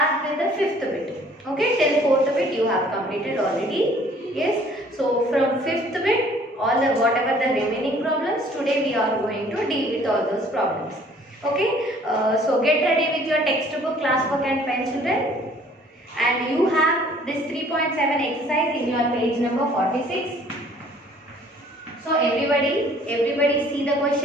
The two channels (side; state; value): both; normal; correlation 0.56